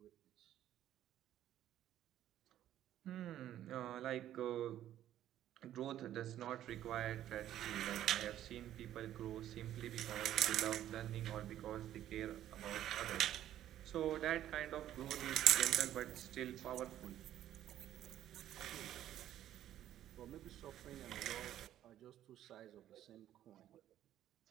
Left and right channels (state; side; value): quieter; left; 12.0 dB